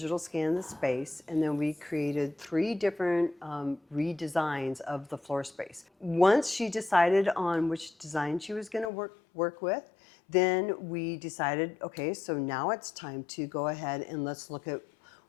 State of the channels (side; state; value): right; drops out; at 8.9 s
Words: scan of the space, and then we created 3 different redesigns of the floor space. Once she decided on which design she was gonna work with, then we decided, okay, so now it's time to go ahead and let's look at